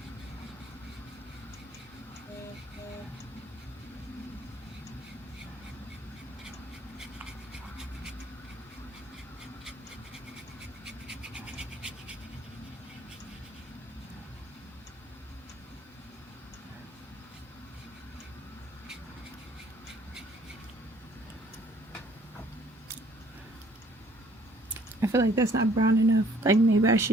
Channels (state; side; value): normal; both; correlation 0.59